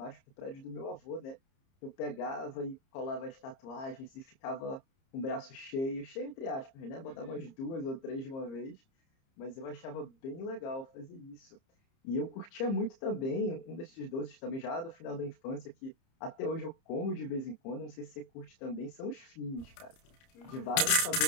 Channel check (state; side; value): late; right; 30 ms